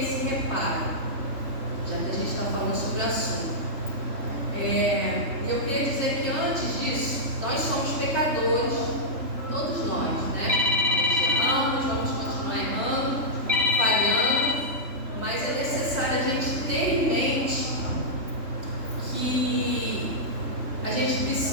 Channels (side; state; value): left; late; 3.3 ms